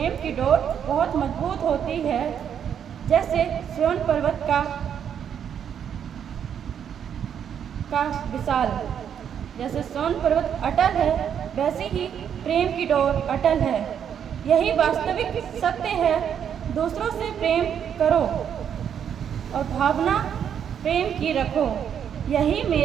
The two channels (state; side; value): quieter; left; 8.5 dB